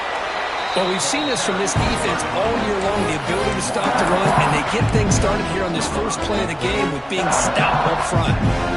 Well, we've seen this from this defense all year long, the ability to stop the run, and they get things started here on this first play of the game with being stout up front.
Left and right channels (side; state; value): both; identical; correlation 1.00